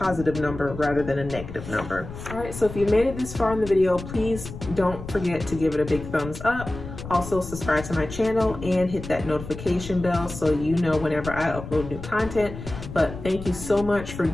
number rather than a negative number. All right, so if you made it this far in the video, please don't forget to give it a big thumbs up. Also subscribe to my channel and hit that notification bell so you know whenever I upload new content. But thank you so much for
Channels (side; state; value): left; noise; rumble, 11 dB below the sound